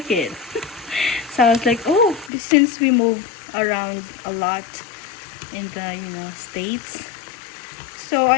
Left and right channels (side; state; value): right; drops out; at 2.3 s